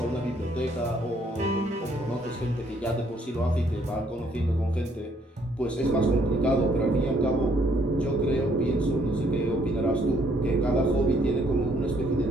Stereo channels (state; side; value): normal; both; correlation 0.66